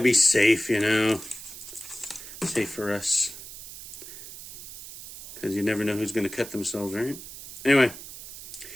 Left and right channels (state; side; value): noise; right; hiss, 13 dB below the sound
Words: safe, you know. Safe for us. Because you never know who's gonna cut themselves, right? Anyway,